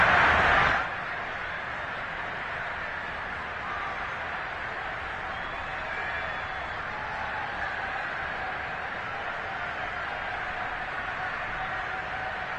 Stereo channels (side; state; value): both; identical; correlation 1.00